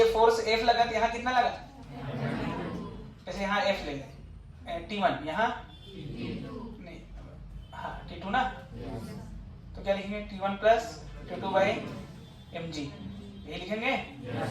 फोर्स f लगा तो यहाँ कितना लगा? जैसे यहाँ f ले लें, t1 यहाँ नहीं, हाँ t2 ना, तो क्या लिखेंगे? t1 plus t2 by mg, यही लिखेंगे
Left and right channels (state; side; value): identical; both; correlation 1.00